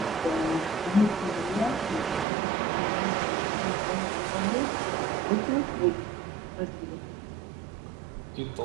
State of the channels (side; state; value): left; drops out; at 2.2 s